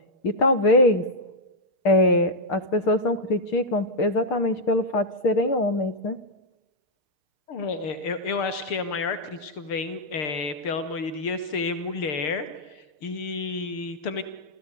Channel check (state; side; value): late; right; 6.6 ms